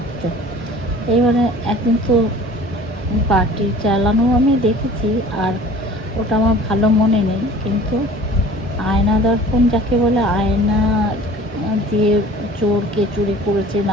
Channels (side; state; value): both; normal; correlation 0.46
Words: এইবারে একদিন তো পাটি চালানো আমি দেখেছি, আর ওটা আমার ভালো মনে নেই, কিন্তু আয়না দর্পণ যাকে বলে, আয়না দিয়ে চোর কে চুরি করেছে